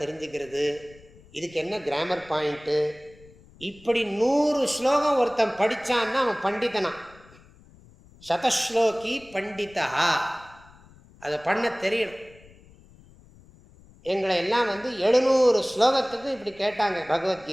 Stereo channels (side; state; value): left; noise; rumble, 25 dB below the sound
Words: தெரிஞ்சுக்கிறது, இதுக்கு என்ன கிராமர் பாயிண்ட்டு, இப்படி 100 ஸ்லோகம் ஒருத்தன் படித்தான்னா அவன் பண்டிதனா. சதஸ்லோகி பண்டிதா. அதை பண்ண தெரியணும். எங்களை எல்லாம் 700 ஸ்லோகத்துக்கு இப்படி கேட்டாங்க